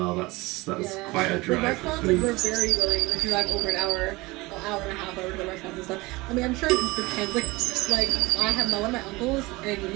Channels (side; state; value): left; quieter; 22.3 dB